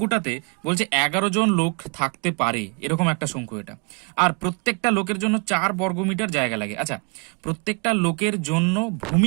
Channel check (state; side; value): quieter; left; 33.6 dB